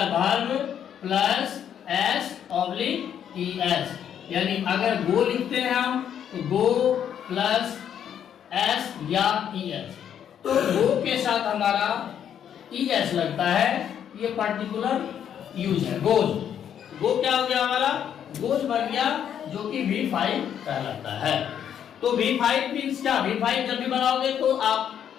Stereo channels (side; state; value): right; quieter; 9.1 dB